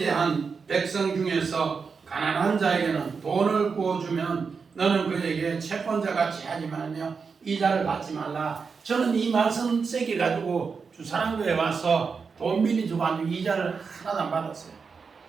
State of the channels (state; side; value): quieter; left; 5.3 dB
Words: 백성 중에서 가난한 자에게는 돈을 구워주면 너는 그에게 채권자같이 하지 말며 이자를 받지 말라. 저는 이 말씀 세게 가지고 주사랑교에 와서 돈 빌려주고 아주 이자를 하나도 안 받았어요.